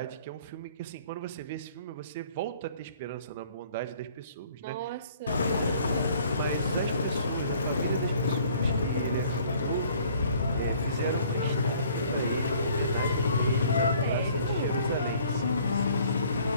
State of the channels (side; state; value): both; inverted; correlation -0.57